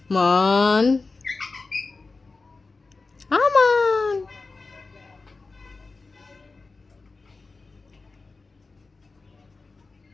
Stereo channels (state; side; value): quieter; right; 3.9 dB